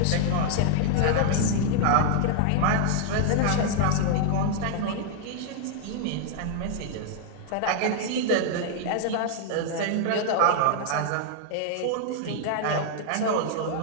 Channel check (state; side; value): different; both; correlation 0.00